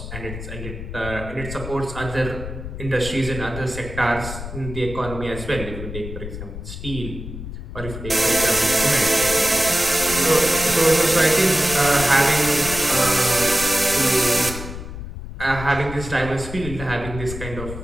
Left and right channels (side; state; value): left; noise; rumble, 9 dB below the sound